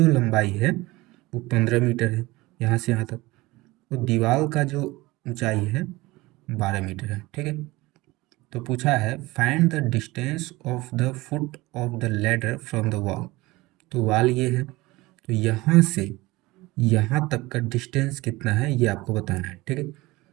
लंबाई है वो 15 मीटर है यहाँ से यहाँ तक, तो दीवार का जो ऊंचाई है 12 मीटर है, ठीक है। तो पूछा है find the distance of the foot of the ladder from the wall. तो वॉल ये है, तो यहाँ से यहाँ तक का डिस्टेंस कितना है ये आपको बताना है, ठीक है।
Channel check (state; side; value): quieter; left; 20.7 dB